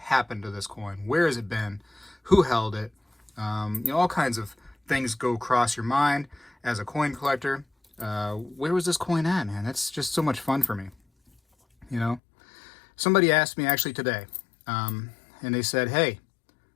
to this coin? Where has it been? Who held it? You know, all kinds of things go across your mind as a coin collector. Where was this coin at, man? That's just so much fun for me. You know, somebody asked me actually today, and they said, hey,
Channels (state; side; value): drops out; right; at 12.2 s